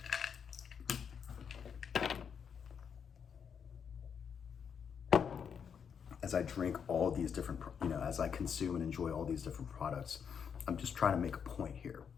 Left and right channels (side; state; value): right; quieter; 7.1 dB